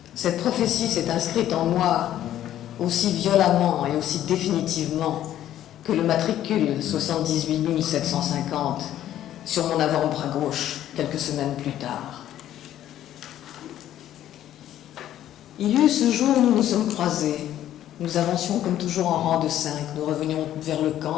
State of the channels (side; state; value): right; quieter; 12.1 dB